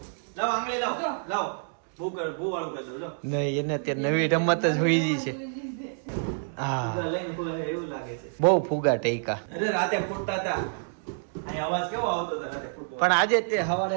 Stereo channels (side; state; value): left; silent; digital silence